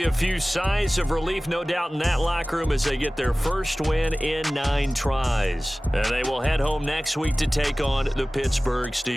a few sighs of relief, no doubt, in that locker room as they get their first win in 9 tries. And they will head home next week to take on the Pittsburgh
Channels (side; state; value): both; normal; correlation 0.98